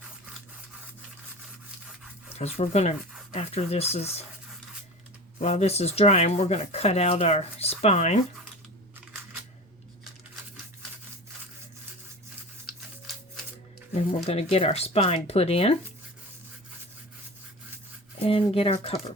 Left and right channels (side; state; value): both; normal; correlation 0.33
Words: Because we're gonna, while this is drying, we're gonna cut out our spine. Then we're going to get our spine put in and get our cover